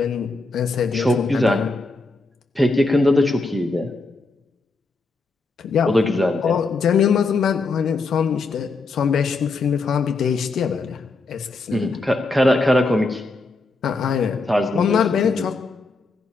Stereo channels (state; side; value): quieter; right; 3.6 dB